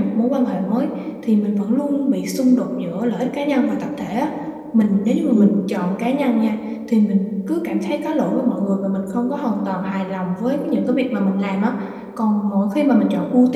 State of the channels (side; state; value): both; identical; correlation 1.00